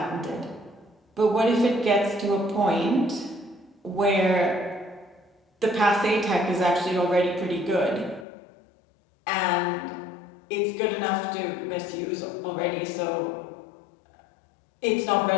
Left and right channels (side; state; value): right; drops out; at 8.2 s